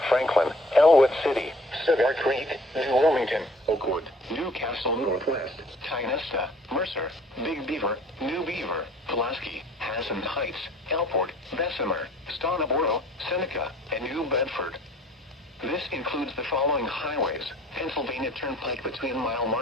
Franklin, Elwood City, Cedar Creek, New Wilmington, Oakwood, Newcastle Northwest, Tynesta, Mercer, Big Beaver, New Beaver, Pulaski, Hassan Heights, Elport, Bessemer, Stoneboro, Seneca, and New Bedford. This includes the following highways: Pennsylvania Turnpike between mile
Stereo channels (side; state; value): both; normal; correlation 0.53